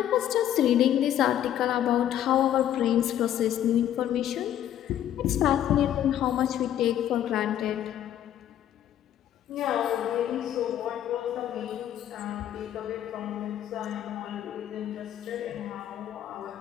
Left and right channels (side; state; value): right; quieter; 11.1 dB